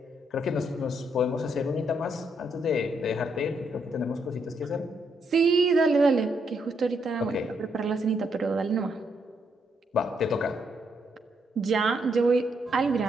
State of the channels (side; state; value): both; normal; correlation 0.76